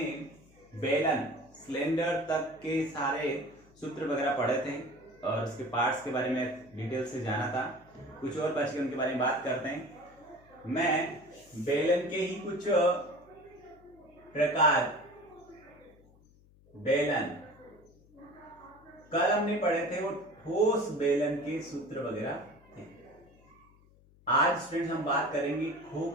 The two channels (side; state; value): left; noise; hum, 28 dB below the sound